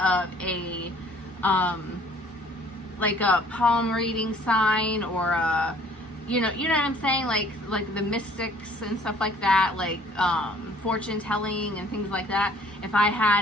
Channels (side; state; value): both; normal; correlation 0.56